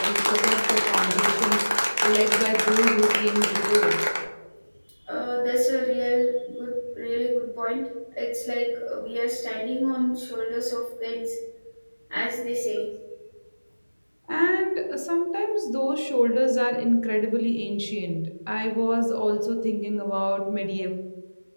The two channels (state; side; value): inverted; both; correlation -1.00